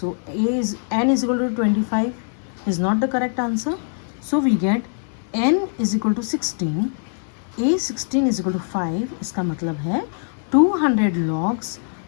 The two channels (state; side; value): silent; right; digital silence